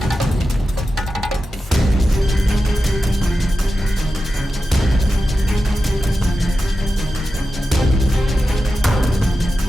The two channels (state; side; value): normal; both; correlation 0.92